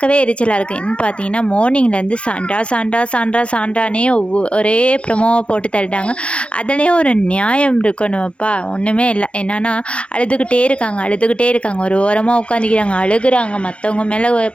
எரிச்சலாக இருக்குது. என்னன்னு பார்த்தீங்கன்னா மார்னிங்லேருந்து சாண்ட்ரா சாண்ட்ரா சாண்ட்ரா சாண்ட்ரானே ஒரே ப்ரமோவை போட்டு தள்ளிட்டாங்க. அதுலேயே ஒரு நியாயம் இருக்கணும்ப்பா, ஒன்றுமே இல்லை. என்னன்னா அழுதுகிட்டே இருக்காங்க, ஒரு ஓரமாக உட்காந்துக்கிறாங்க, அழுகுறாங்க, மற்றவங்க மேலே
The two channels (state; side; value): late; right; 0.059 ms